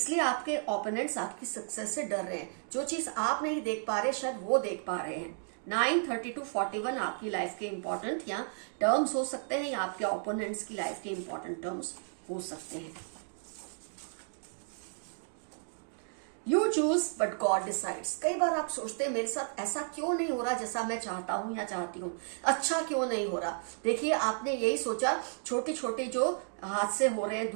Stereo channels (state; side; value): silent; left; digital silence